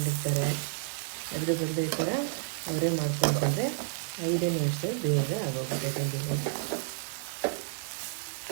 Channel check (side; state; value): left; silent; digital silence